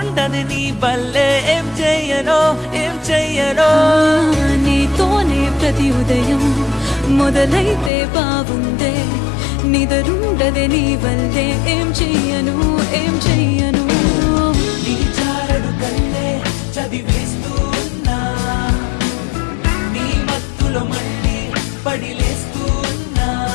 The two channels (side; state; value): right; drops out; at 7.9 s